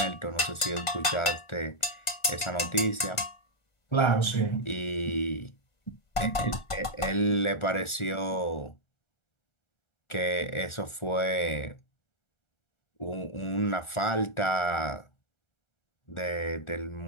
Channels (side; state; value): right; late; 1.5 ms